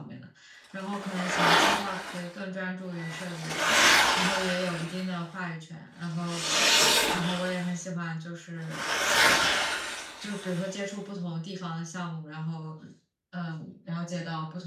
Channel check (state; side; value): identical; both; correlation 1.00